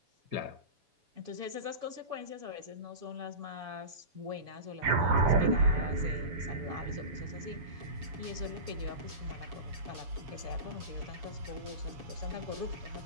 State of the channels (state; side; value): late; left; 7.0 ms